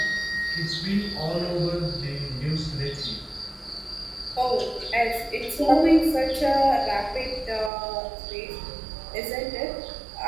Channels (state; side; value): drops out; left; at 7.7 s